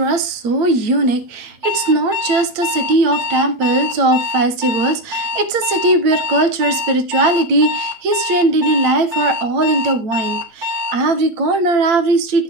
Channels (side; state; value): left; late; 8.8 ms